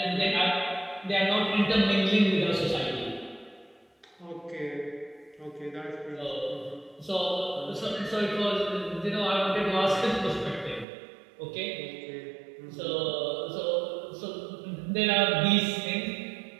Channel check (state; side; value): drops out; left; at 10.9 s